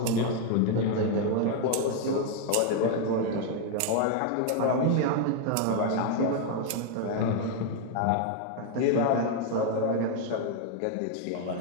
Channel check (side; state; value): both; different; correlation 0.01